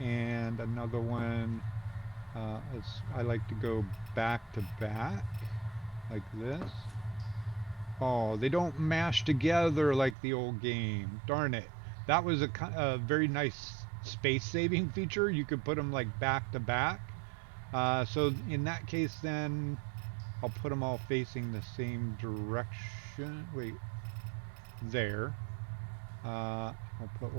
another one. As I like to go back to back like this. Oh, they don't mash together like the old game. Darn it. That was a very nice space saving feature. You could put them like back to back. So in that case, then I'll put them all facing the same direction. Wait, there. I'll put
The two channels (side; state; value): left; drops out; at 10.2 s